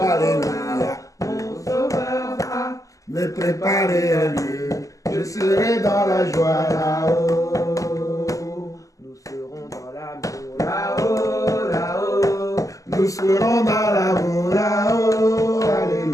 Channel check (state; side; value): late; right; 0.16 ms